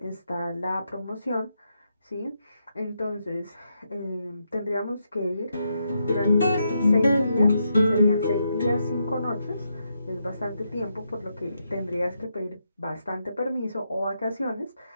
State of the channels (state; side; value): inverted; both; correlation -0.81